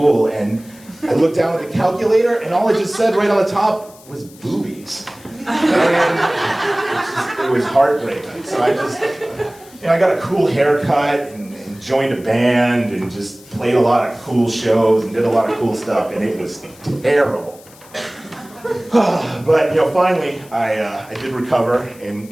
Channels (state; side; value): noise; left; hiss, 24 dB below the sound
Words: And I looked down at the calculator and all it just said right on the top was boobies. And it was heartbreaking. So I got a cool haircut and joined a band and just played a lot of cool shows and did a lot of cool stuff, and it was terrible. But you know, finally, I did recover